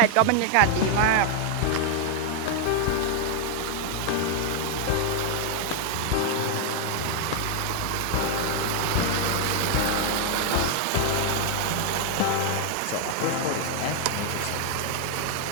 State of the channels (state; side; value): different; both; correlation 0.00